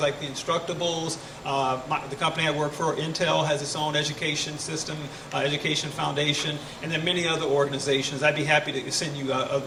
the Instructables, the company I work for, Intel, has its own education system, education foundation, and then many other organizations. I'd be happy to send you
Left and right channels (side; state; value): both; identical; correlation 1.00